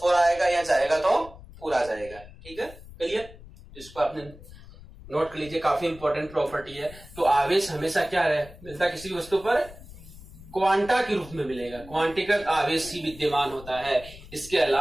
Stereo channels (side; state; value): left; noise; rumble, 18 dB below the sound